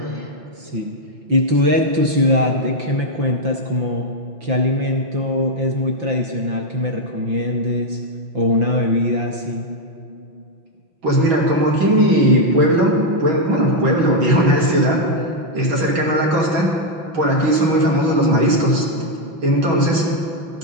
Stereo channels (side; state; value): left; late; 6.2 ms